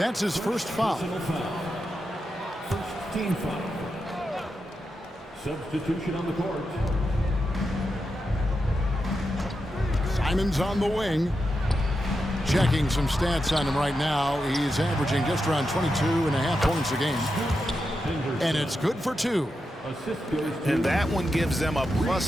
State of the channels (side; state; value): both; normal; correlation 0.87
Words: his first foul. First team foul. Substitution on the court. Simon's on the wing. Checking some stats on him right now. He's averaging just around 22.5 points a game. And it's good for 2. Assist goes to And that one gives them a